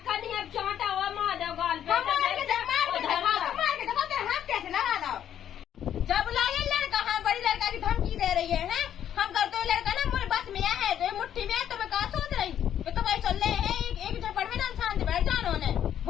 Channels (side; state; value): right; quieter; 10.1 dB